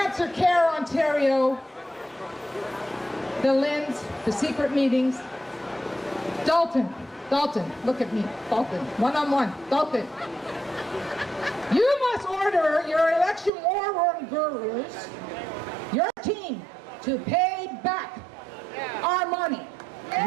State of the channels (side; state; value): left; drops out; at 13.5 s